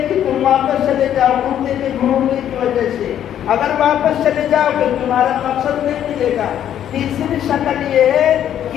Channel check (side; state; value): right; quieter; 10.4 dB